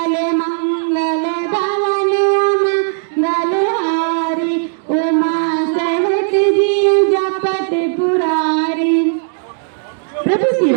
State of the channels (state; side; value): silent; left; 69 dB below the other